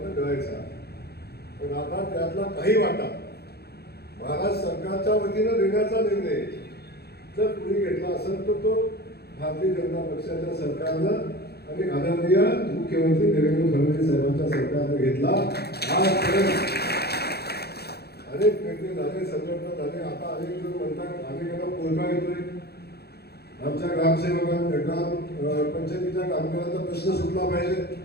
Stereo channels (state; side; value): late; right; 0.47 ms